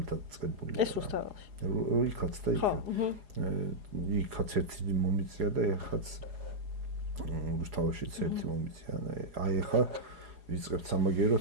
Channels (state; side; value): late; left; 4.9 ms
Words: დაწყებული. ეს რუსთაველში. იქაც და იქაც. იქაც ერთი მომიწია და ეხაც რუსთაველშიც ერთი მომიწია. აი ახლა ვიწყებთ